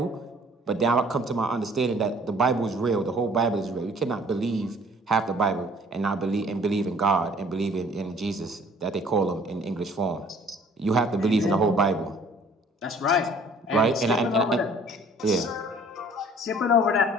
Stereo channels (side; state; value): both; normal; correlation 0.55